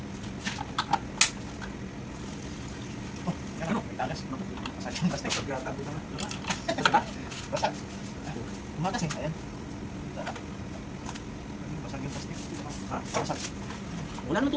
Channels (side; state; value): both; identical; correlation 1.00